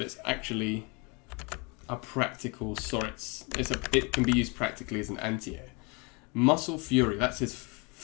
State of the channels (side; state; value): right; quieter; 30.5 dB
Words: it's actually a practical SORIZ. It can be used practically as an anti-air. Muscle Fury. That's his